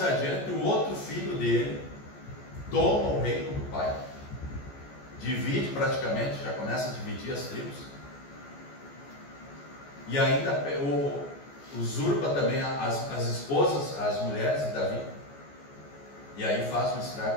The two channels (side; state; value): right; late; 14 ms